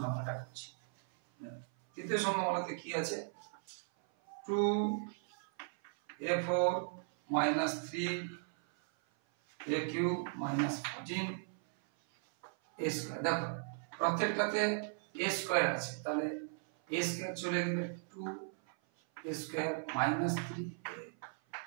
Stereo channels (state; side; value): silent; left; 53 dB below the other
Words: আমরা করছি। তৃতীয় সংখ্যা বলতে কি আছে, 2a4 minus 3a cube minus 14 a square. দেখো প্রত্যেকটাতে a স্কয়ার আছে, তাহলে a স্কয়ার চলে গেলে 2a square minus 3a